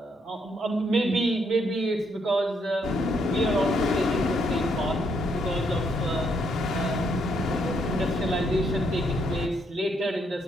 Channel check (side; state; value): both; normal; correlation 0.74